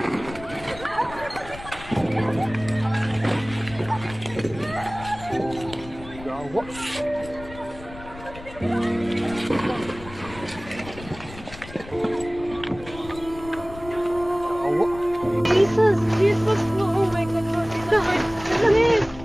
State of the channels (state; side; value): noise; left; rumble, 16 dB below the sound